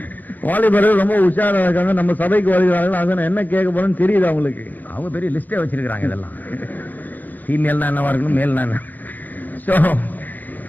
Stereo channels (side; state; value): right; late; 0.084 ms